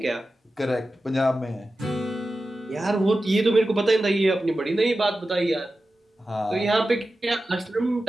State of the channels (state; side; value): normal; both; correlation 0.93